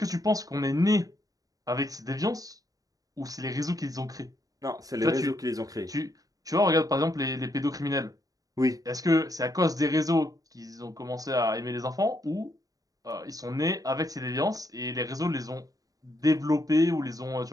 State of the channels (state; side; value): late; left; 0.18 ms